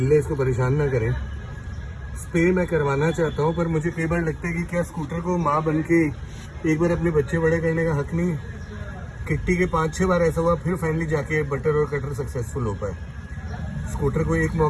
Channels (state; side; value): identical; both; correlation 1.00